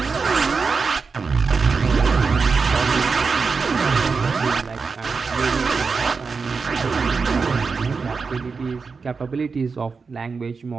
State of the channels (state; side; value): quieter; left; 4.9 dB